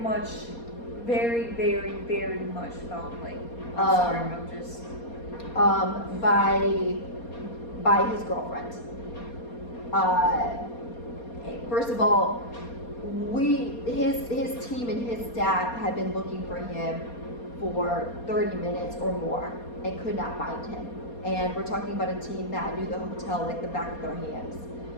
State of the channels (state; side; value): late; right; 4.2 ms